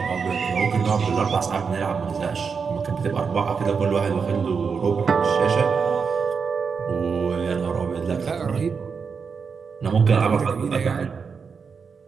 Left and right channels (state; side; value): quieter; left; 5.7 dB